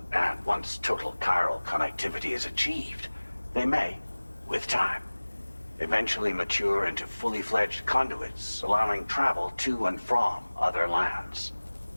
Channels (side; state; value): both; inverted; correlation -1.00